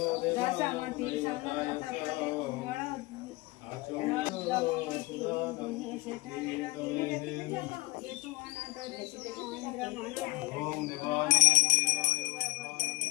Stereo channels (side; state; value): right; quieter; 21.7 dB